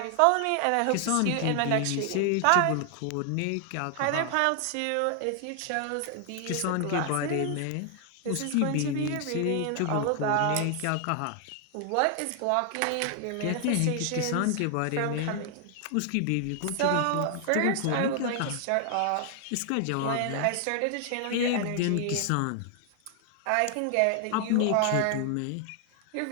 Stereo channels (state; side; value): different; both; correlation 0.00